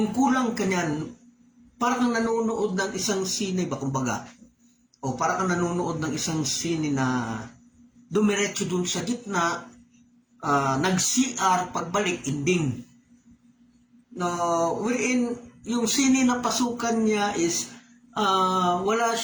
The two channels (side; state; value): both; identical; correlation 1.00